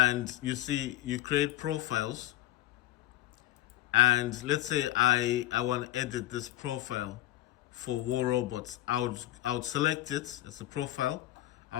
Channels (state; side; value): quieter; right; 15.4 dB